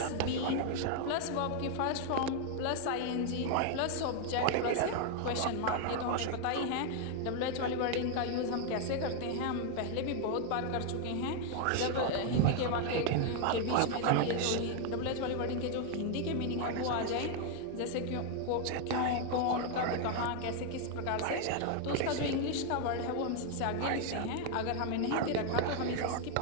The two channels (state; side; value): different; both; correlation 0.00